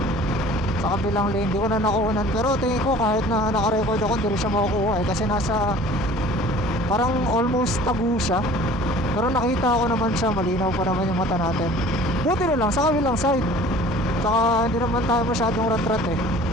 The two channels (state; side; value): normal; both; correlation 0.47